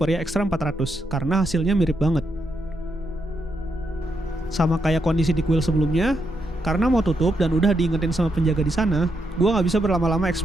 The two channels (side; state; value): both; normal; correlation 0.81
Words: Extra 400, karena hasilnya mirip banget. Sama kayak kondisi di kuil sebelumnya, karena mau tutup dan udah diingetin sama penjaga di sana, gue nggak bisa berlama-lama